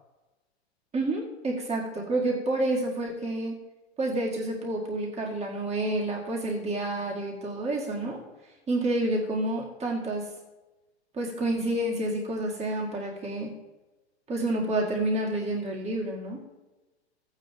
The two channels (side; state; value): both; normal; correlation 0.35